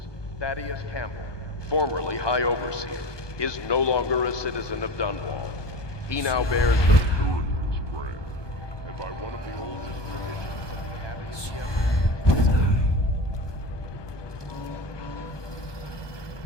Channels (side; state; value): right; late; 1.2 ms